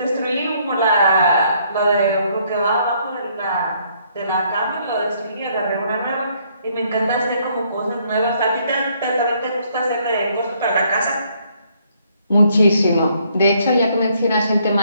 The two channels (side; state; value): both; inverted; correlation -0.68